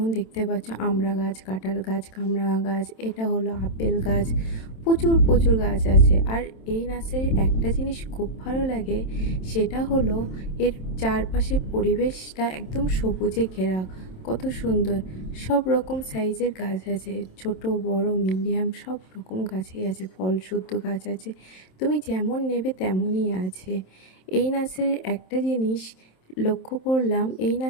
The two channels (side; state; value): right; late; 27 ms